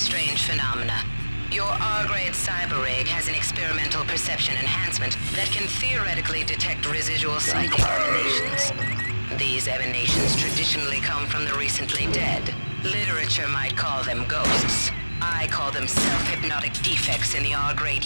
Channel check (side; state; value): both; inverted; correlation -1.00